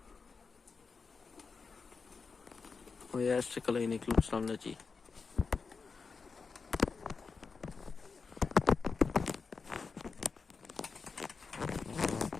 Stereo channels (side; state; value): right; quieter; 4.9 dB